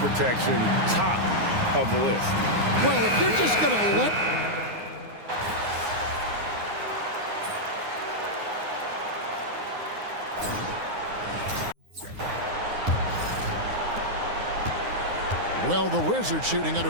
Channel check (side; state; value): left; late; 9.6 ms